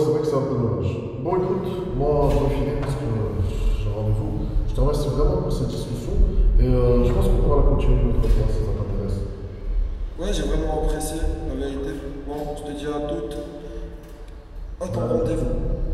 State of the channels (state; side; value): identical; both; correlation 1.00